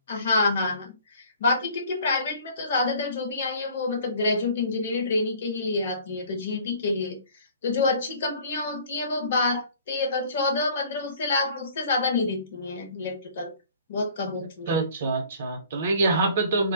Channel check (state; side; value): inverted; both; correlation -0.52